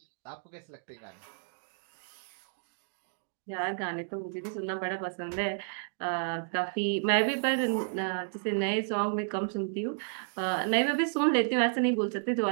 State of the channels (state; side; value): silent; left; digital silence